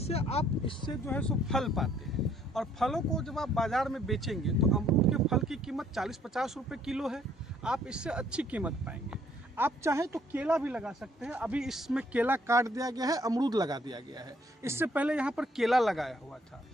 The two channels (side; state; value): both; normal; correlation 0.64